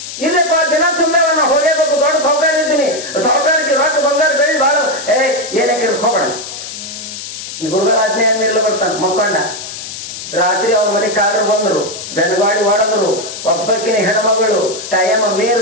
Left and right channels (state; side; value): noise; left; hiss, 9 dB below the sound